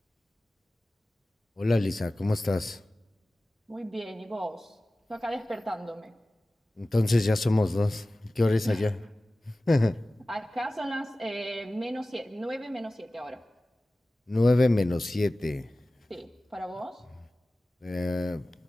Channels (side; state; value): both; normal; correlation 0.97